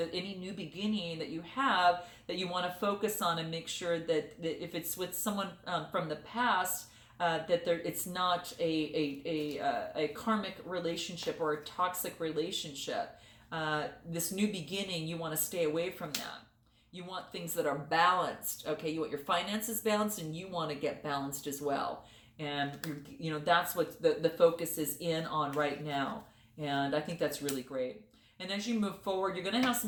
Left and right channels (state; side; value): identical; both; correlation 1.00